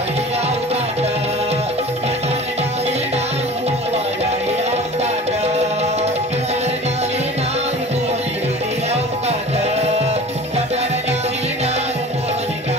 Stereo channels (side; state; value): both; normal; correlation 0.41